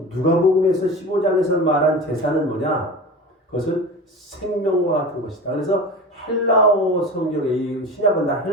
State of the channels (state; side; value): normal; both; correlation 0.32